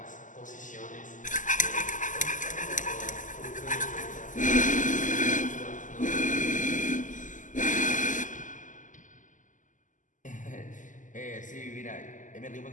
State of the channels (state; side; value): late; right; 0.37 ms